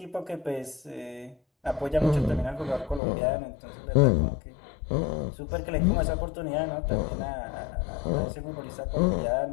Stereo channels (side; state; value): right; drops out; at 3.0 s